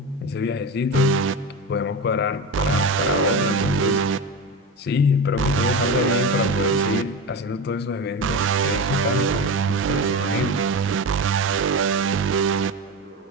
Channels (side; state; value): both; normal; correlation 0.23